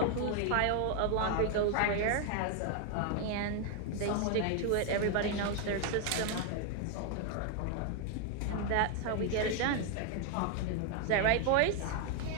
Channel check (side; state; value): both; different; correlation 0.00